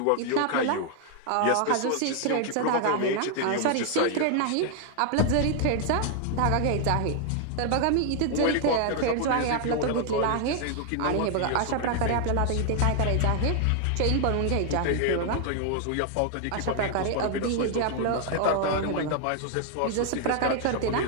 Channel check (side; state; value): both; different; correlation 0.00